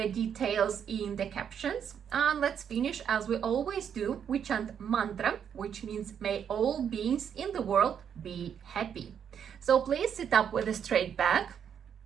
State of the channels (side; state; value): left; quieter; 8.2 dB